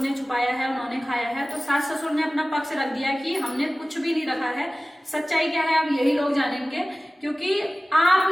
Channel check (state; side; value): normal; both; correlation 0.97